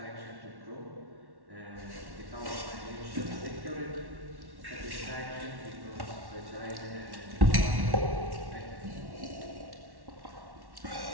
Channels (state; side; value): late; left; 1.1 ms